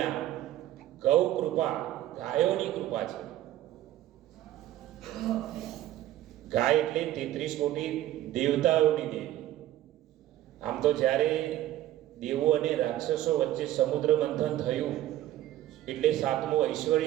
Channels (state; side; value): quieter; left; 13.7 dB